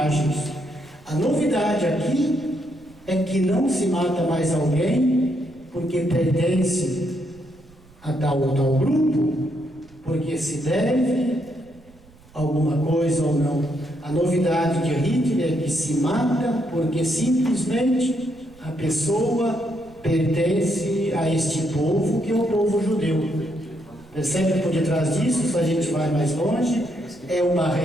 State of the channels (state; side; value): noise; right; rumble, 26 dB below the sound